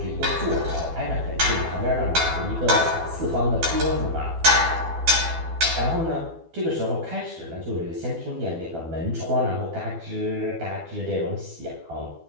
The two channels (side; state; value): left; late; 12 ms